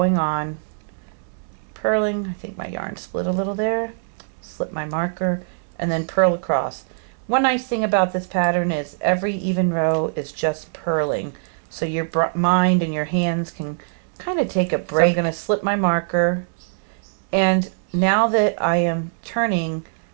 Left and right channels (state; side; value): silent; left; digital silence